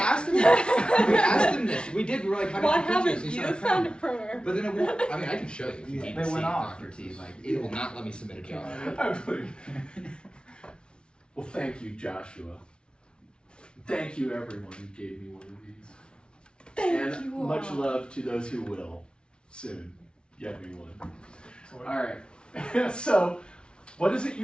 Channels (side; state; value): right; late; 0.056 ms